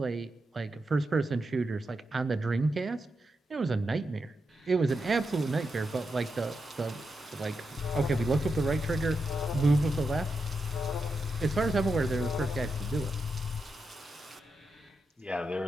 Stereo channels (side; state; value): both; normal; correlation 0.86